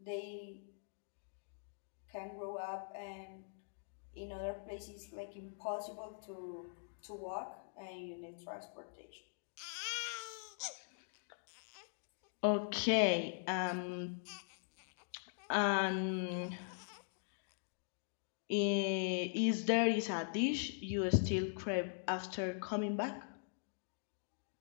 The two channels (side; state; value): right; silent; digital silence